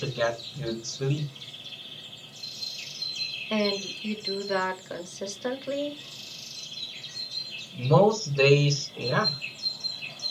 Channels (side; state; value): both; identical; correlation 1.00